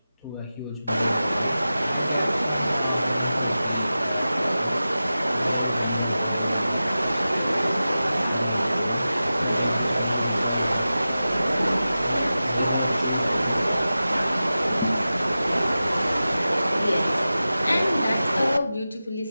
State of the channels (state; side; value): inverted; both; correlation -0.94